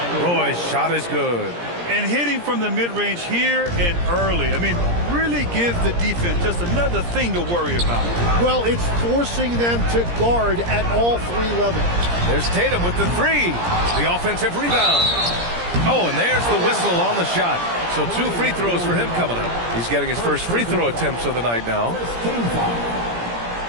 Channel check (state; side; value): late; left; 17 ms